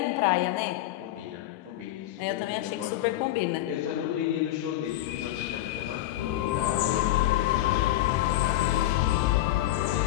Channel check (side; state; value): right; quieter; 14.6 dB